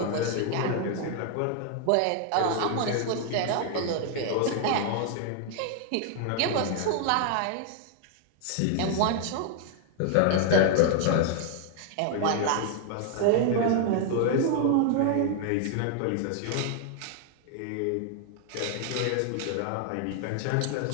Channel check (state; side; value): different; both; correlation 0.00